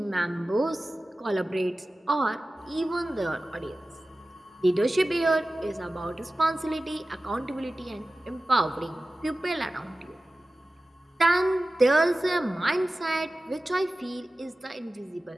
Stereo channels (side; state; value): both; normal; correlation 0.96